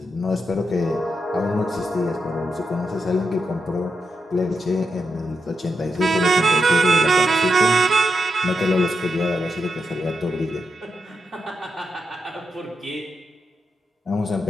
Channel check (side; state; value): both; normal; correlation 0.85